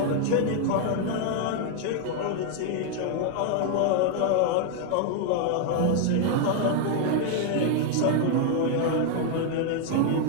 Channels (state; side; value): different; both; correlation 0.00